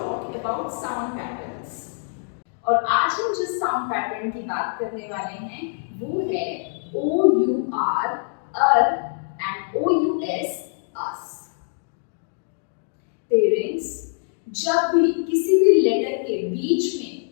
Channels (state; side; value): silent; right; digital silence